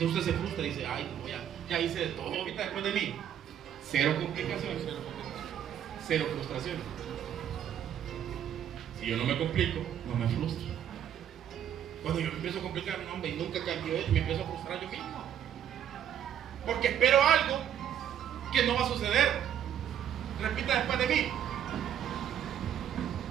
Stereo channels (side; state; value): left; quieter; 10.0 dB